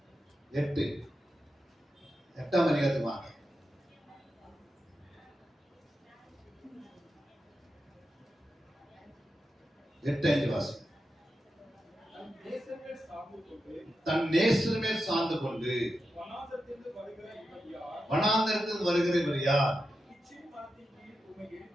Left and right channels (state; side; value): normal; both; correlation 0.89